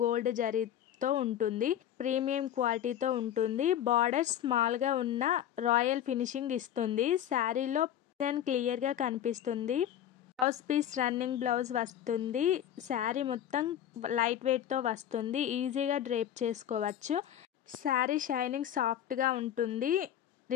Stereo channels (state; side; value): quieter; right; 10.8 dB